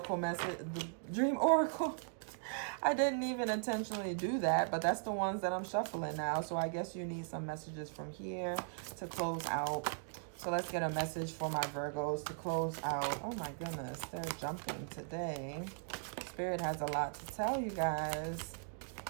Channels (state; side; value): silent; left; digital silence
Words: message, the Dream Oracle. I didn't even intentionally do that, but that's the ones that I'm shuffling now. So I guess you need some messages from here to close out. So let's get a message for my Virgos to close out. Oh my goodness, they're jumping today. Spirit has a lot to tell you guys.